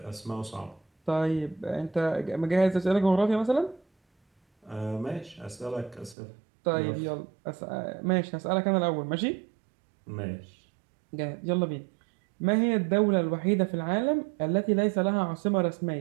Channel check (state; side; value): drops out; left; at 6.2 s